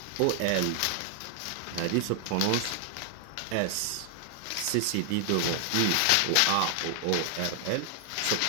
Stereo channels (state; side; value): different; both; correlation 0.00